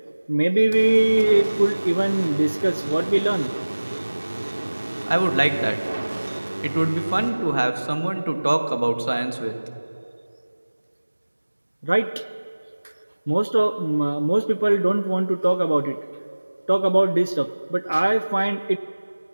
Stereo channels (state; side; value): inverted; both; correlation -1.00